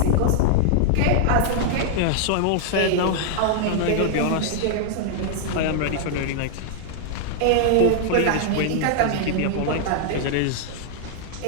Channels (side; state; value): both; different; correlation -0.01